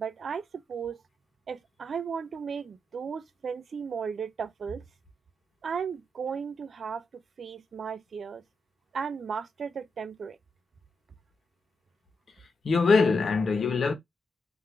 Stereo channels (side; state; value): both; normal; correlation 0.84